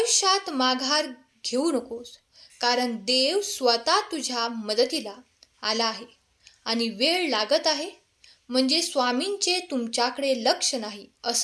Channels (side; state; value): both; identical; correlation 1.00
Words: माघार घेऊ नकोस, कारण देव स्वतः तुझ्या मदतीला आला आहे आणि वेळ लागत आहे म्हणजे स्वामींचे तुमच्याकडे लक्ष नाही